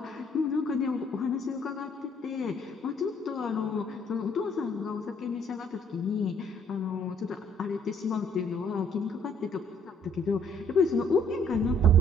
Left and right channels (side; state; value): both; normal; correlation 0.62